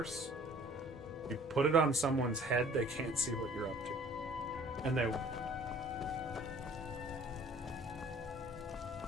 you put it on someone's head, they can't see what you're up to. And they...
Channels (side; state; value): both; normal; correlation 0.53